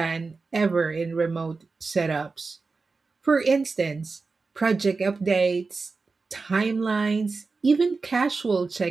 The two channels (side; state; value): left; quieter; 4.2 dB